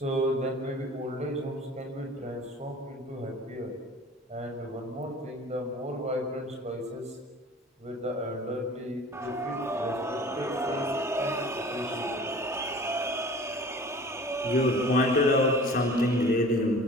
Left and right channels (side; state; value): both; normal; correlation 0.43